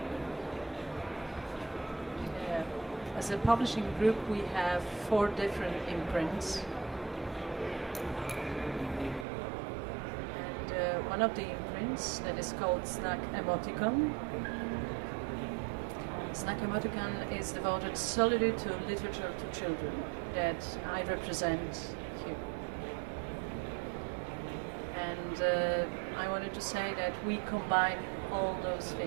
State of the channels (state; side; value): drops out; left; at 9.2 s